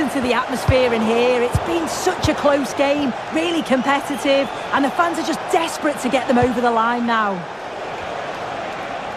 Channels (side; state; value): both; identical; correlation 1.00